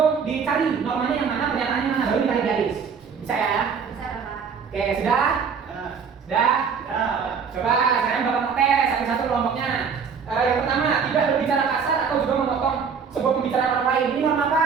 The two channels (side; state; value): left; quieter; 6.2 dB